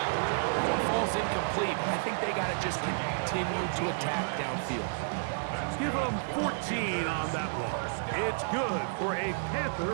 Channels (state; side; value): silent; left; 57 dB below the other